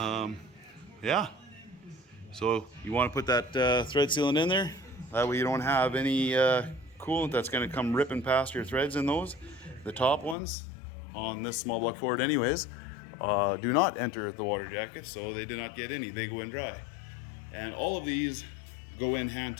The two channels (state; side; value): drops out; right; at 10.4 s